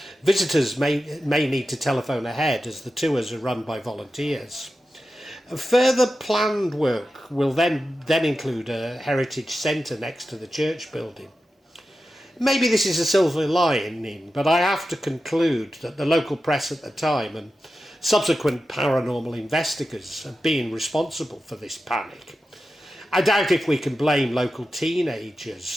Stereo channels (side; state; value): both; normal; correlation 0.92